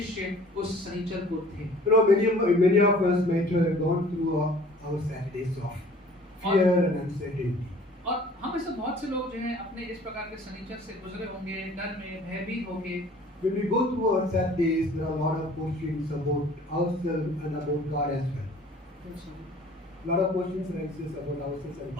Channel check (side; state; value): both; normal; correlation 0.50